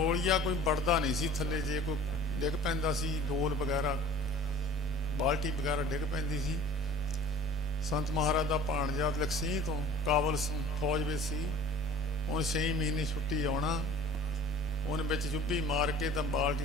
ਕੋਈ ਵੜਦਾ ਨਹੀਂ ਸੀ ਥੱਲੇ, ਜੇ ਕੋਈ ਡਿੱਗ ਪੈਂਦਾ ਸੀ, ਡੋਲ ਵਗੈਰਾ ਬਾਲਟੀ ਵਗੈਰਾ ਡਿੱਗ ਪੈਂਦੀ ਸੀ। ਸੰਤ ਮਹਾਰਾਜ ਦਾ ਭਾਣਜਾ ਲਕਸੀਹ ਤੋਂ ਕਾਬਲ ਫੌਜ ਵਿੱਚ ਸੀ, ਉਹਨੇ 6 ਮਹੀਨੇ ਛੁੱਟੀ ਆਉਣਾ, ਉਹਨੇ ਵਿੱਚ ਚੁੱਭੀ ਮਾਰ ਕੇ ਤਾਂ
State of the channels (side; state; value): both; normal; correlation 0.45